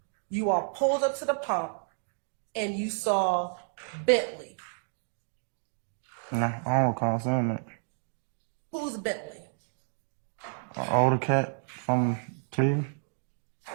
you all pulled up to the pump and you saw Bentley? No, I don't recall saying that. Who's Bentley? An older cat from Cleveland.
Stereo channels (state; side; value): silent; left; digital silence